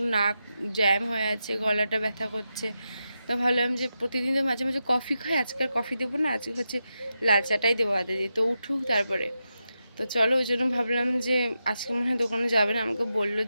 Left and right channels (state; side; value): inverted; both; correlation -0.88